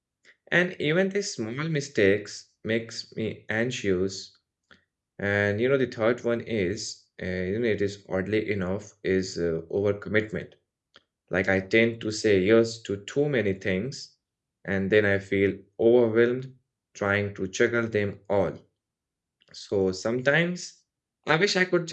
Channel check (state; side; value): identical; both; correlation 1.00